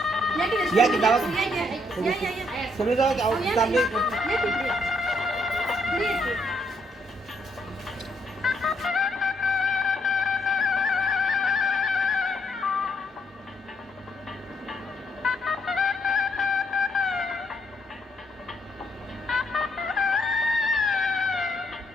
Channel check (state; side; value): normal; both; correlation 0.73